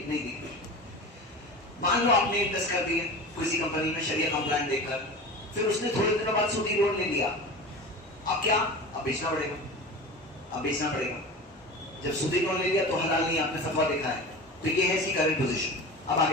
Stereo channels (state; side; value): normal; both; correlation 0.32